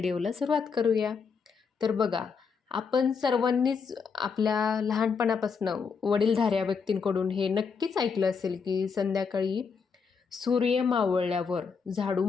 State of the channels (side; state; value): right; quieter; 5.7 dB